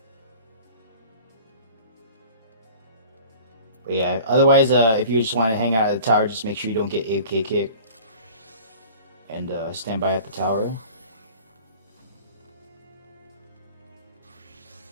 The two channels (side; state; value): both; inverted; correlation -0.44